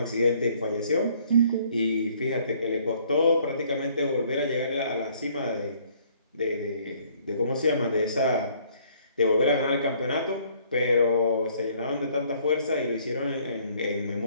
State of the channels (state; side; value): inverted; both; correlation -0.61